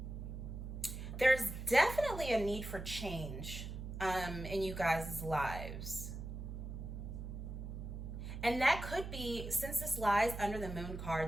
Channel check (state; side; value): noise; right; hum, 7 dB below the sound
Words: There's definitely a need for change in you guys' lives. And that could be, since this lies under the moon